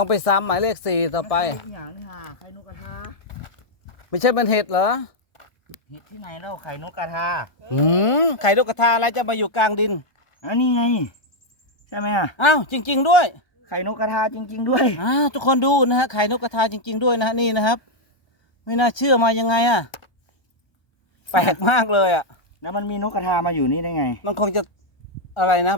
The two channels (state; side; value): late; right; 1.2 ms